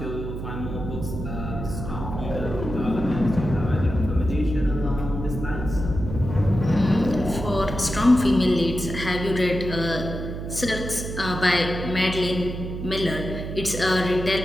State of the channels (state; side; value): noise; right; hum, 7 dB below the sound